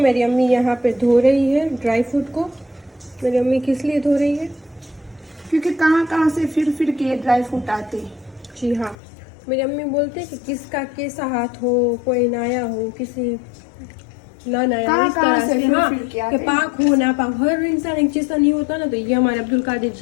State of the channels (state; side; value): drops out; right; at 9.0 s